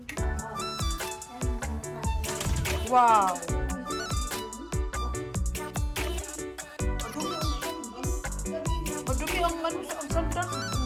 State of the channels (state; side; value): identical; both; correlation 1.00